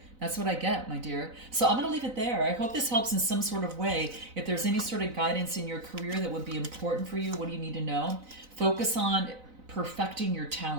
That's what I get, my dear. So I'm going to leave it there. I hope this helps in some sort of way. If there's any sort of guidance in your career that would be important for you, what do you need to know? Focus on perfecting your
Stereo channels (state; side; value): late; left; 4.0 ms